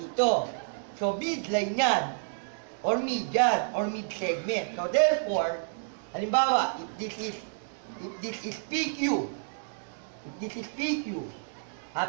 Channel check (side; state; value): left; silent; digital silence